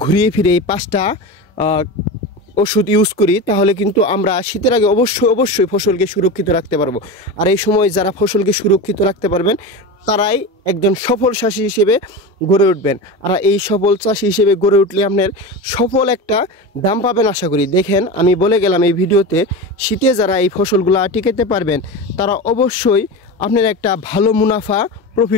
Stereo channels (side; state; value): both; normal; correlation 0.24